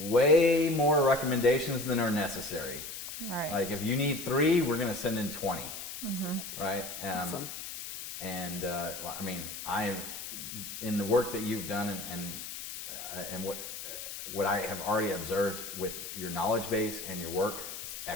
more recommendations than are necessary. Right. Like, if you need 3, we're going to send in 20. Right? Awesome. And I mean, in the work that you've done and what I have already observed with your knowledge base and your work, it's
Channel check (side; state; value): left; noise; hiss, 8 dB below the sound